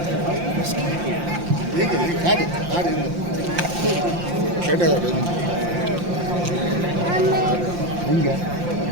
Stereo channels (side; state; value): left; late; 5.7 ms